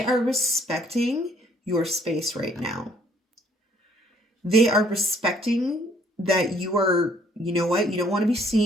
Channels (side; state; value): both; normal; correlation 0.62